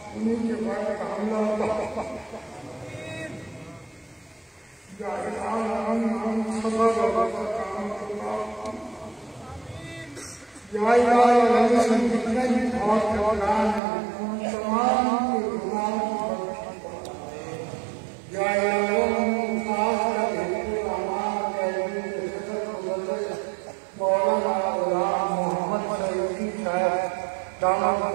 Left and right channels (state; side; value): drops out; left; at 13.8 s